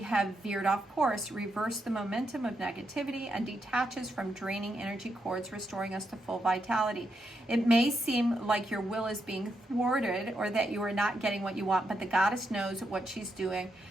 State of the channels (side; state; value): both; normal; correlation 0.82